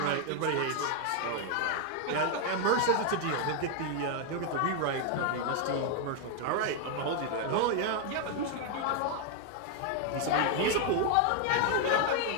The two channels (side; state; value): both; different; correlation 0.01